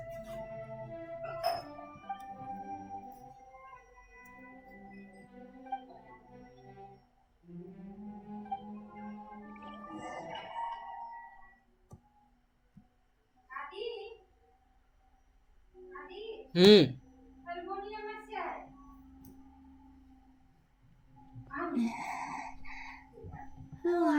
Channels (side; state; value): both; identical; correlation 1.00